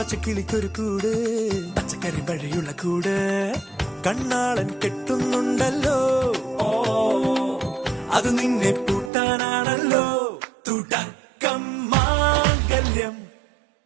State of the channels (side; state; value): left; drops out; at 9.1 s